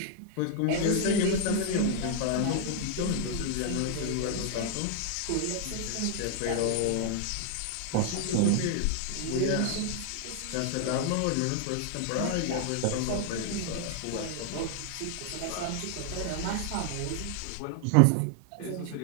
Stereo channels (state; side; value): different; both; correlation 0.00